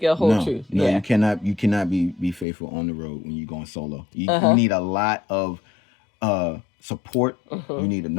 it'll hold truth? No, you cannot be faithful on the road when you're going solo. You need a lot of support. You need a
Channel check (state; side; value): drops out; right; at 2.5 s